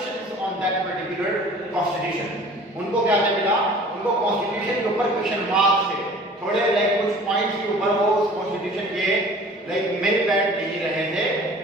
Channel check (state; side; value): normal; both; correlation 0.47